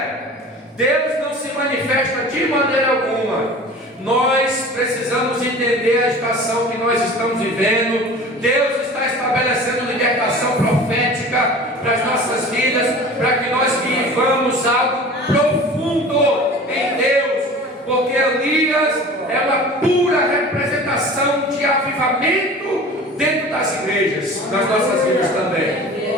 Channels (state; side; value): normal; both; correlation 0.40